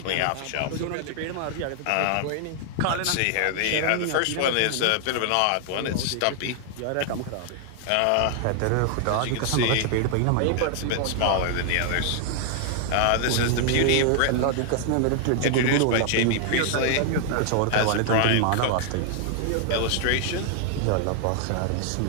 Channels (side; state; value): both; different; correlation 0.00